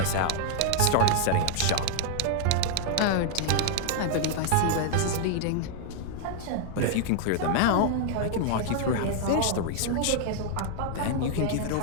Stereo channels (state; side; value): different; both; correlation 0.00